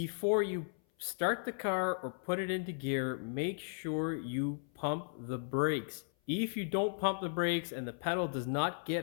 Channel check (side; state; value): right; silent; 54 dB below the other